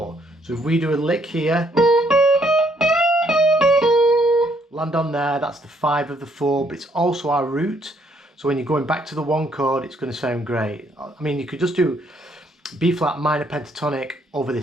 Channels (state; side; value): normal; both; correlation 0.69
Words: So if we do a lick here, land on there, that's the 5 of the 4, but it's also our root. So when you're going back to the 1 chord, it's going to sound great. I mean, you could just do B flat minor pentatonic over